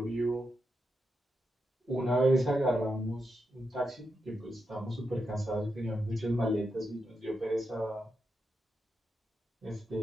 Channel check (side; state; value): both; normal; correlation 0.86